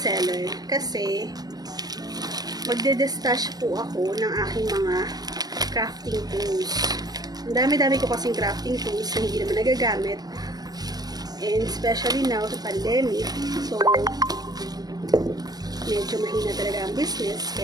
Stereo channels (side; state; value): left; late; 0.19 ms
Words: kasi magde-destash po ako ng aking mga crafting tools. Ang dami-dami ko kasing crafting tools na hindi naman nagagamit, and especially now sa pandemic, so medyo mahina talaga ang business.